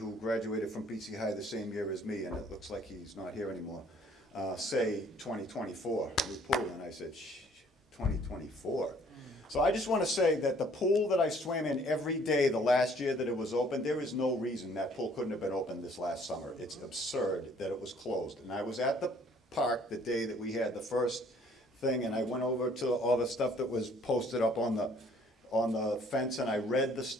graduated from BC High the same year as me, and it looks like he's not here anymore, say 2024, new pool. And I said, 2024? So I just want to say that the pool that I swam in every day the last year that it was open, there is no reason that pool couldn't have been open this last summer. It's absurd that it was closed. And I was at the park the day that we had the first thing, and I went over to all the stuff that was posted up on the fence, and I read the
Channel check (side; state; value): both; normal; correlation 0.59